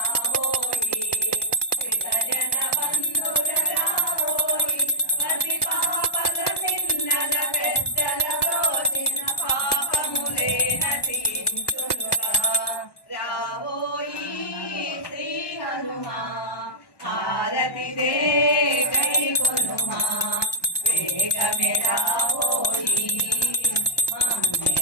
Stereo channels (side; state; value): right; late; 1.1 ms